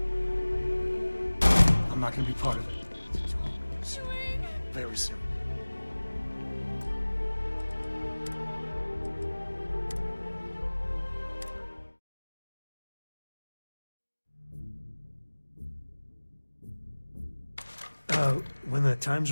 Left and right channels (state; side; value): inverted; both; correlation -1.00